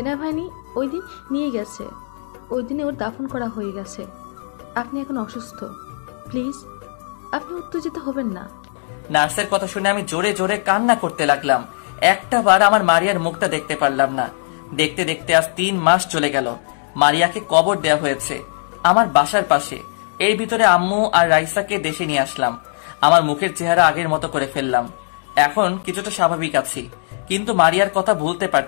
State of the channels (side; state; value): right; silent; 66 dB below the other